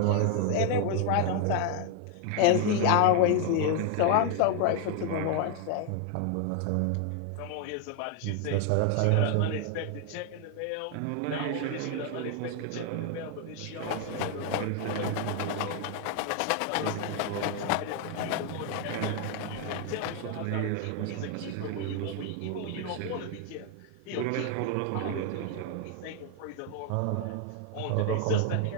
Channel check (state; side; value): different; both; correlation 0.01